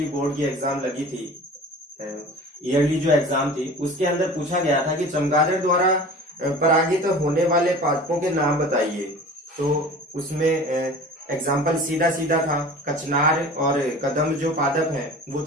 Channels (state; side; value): normal; both; correlation 0.40